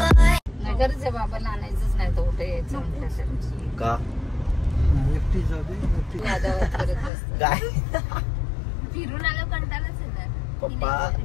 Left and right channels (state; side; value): drops out; right; at 7.1 s